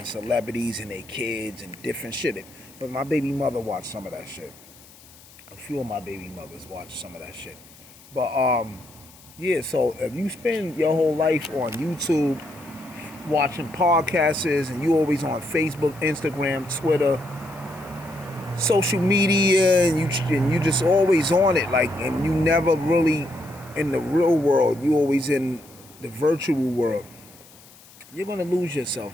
celebrities and their kids and different shit. But my baby mother watched some of that shit. A few of my baby mothers watched some of that shit. But yeah, so if you spend your whole life on YouTube watching podcasts, and you always on Facebook, Instagram, Twitter, social media, and you just always on it, like, and you never really in the real world, you always in the virtual world, you're gonna lose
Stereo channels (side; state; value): left; noise; hiss, 23 dB below the sound